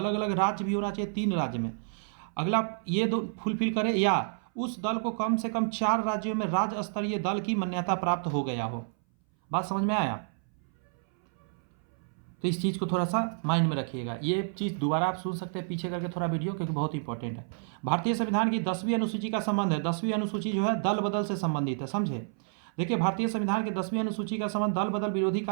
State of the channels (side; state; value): left; silent; 58 dB below the other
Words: अलग राज्य भी होना चाहिए 3 राज्य में। अगला ये 2 फुलफिल करे, या उस दल को कम से कम 4 राज्यों में राज्य स्तरीय दल की मान्यता प्राप्त हो गया हो। बात समझ में आया। तो इस चीज़ को थोड़ा सा माइंड में रखिएगा। ये चीज़ दोबारा आप सुन सकते हैं पीछे करके थोड़ा वीडियो, क्योंकि बहुत इंपॉर्टेंट है। भारतीय संविधान की 10वीं अनुसूची का संबंध है, 10वीं अनुसूची जो है दल बदल से संबंधित है, समझे। देखिए भारतीय संविधान के 10वीं अनुसूची का संबंध दल बदल विरोधी